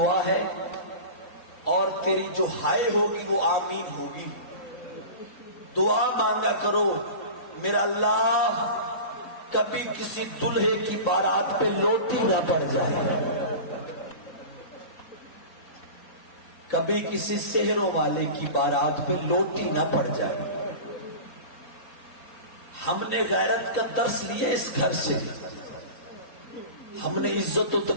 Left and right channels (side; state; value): right; late; 3.8 ms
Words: ہے, اور تیری جو ہائے ہوگی وہ آمین ہوگی. دعا مانگا کرو میرا اللہ کبھی کسی دلہے کی بارات پہ لوٹی نہ پڑ جائے, کبھی کسی سحروں والے کی بارات پہ لوٹی نہ پڑ جائے. ہم نے غیرت کا درس لیا اس گھر سے, ہم نے عزت و